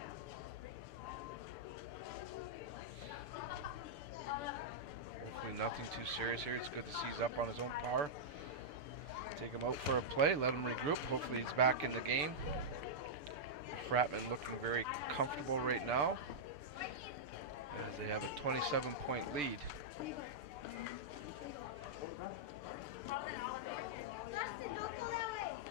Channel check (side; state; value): left; late; 6.8 ms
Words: Nothing too serious here. It's good to see he's up on his own power. Take him out for a play, let him regroup. Hopefully he's back in the game. The Fratmen looking very comfortable right now as they have a 27-point lead.